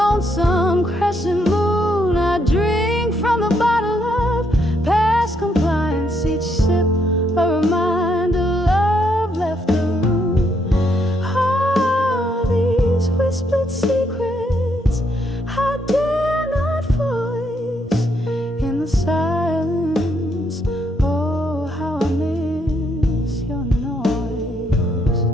crescent moon, I drink from the bottle of past compliance. Each sip a reminder love left the room. All these whispered secrets I dare not voice in the silence. Oh, how I miss your noise.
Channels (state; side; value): normal; both; correlation 0.74